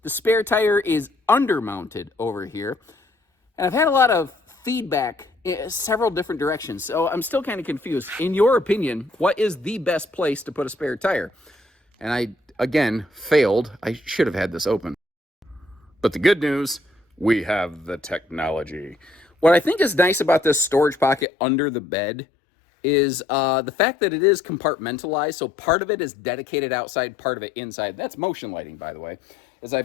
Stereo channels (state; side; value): drops out; right; at 21.2 s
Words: the spare tire is undermounted over here. And I've had a lot of feedback in several different directions, so I'm still kind of confused. In your opinion, what is the best place to put a spare tire? And I, again, failed. I should have had this open. But the good news, we have the technology. What I think is nice about this storage pocket under the bed is the fact that it is compartmentalized. So part of it is dedicated outside, part of it inside. That's motion lighting, by the way. As I